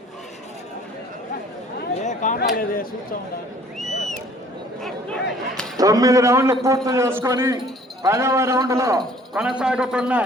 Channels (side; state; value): both; normal; correlation 0.55